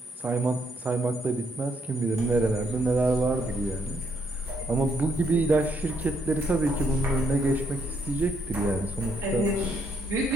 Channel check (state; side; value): normal; both; correlation 0.74